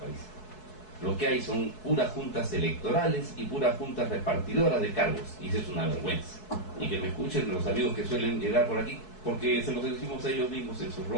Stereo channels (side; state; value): right; late; 4.7 ms